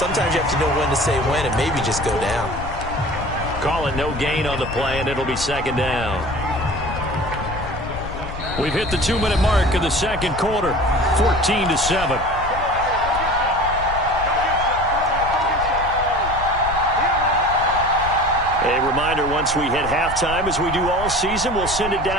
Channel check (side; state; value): left; noise; rumble, 10 dB below the sound